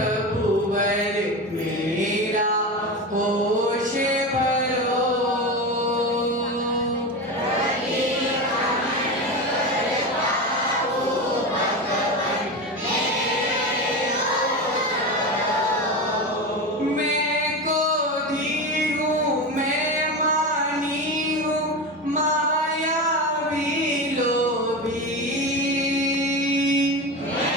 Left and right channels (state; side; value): normal; both; correlation 0.22